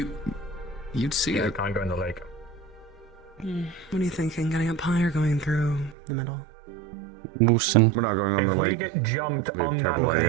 You'd see Yeah, it. can't go in the lake. What are you thinking? Getting up high or going through the middle? Moosin. We're not going on If the we lake. get jumped Be a on that terrible idea.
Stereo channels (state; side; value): drops out; left; at 6.0 s